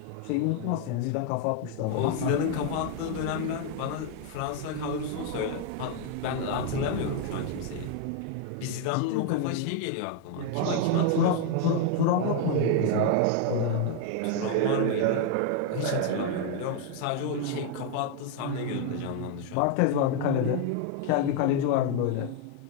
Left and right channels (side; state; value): both; different; correlation 0.01